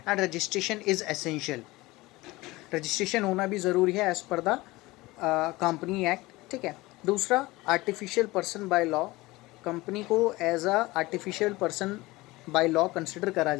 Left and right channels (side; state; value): right; quieter; 20.5 dB